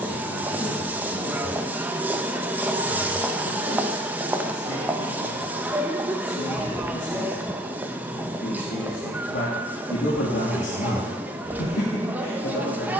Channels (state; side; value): normal; both; correlation 0.54